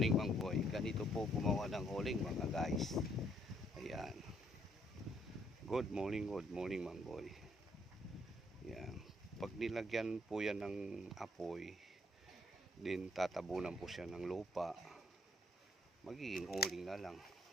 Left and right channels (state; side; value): normal; both; correlation 0.69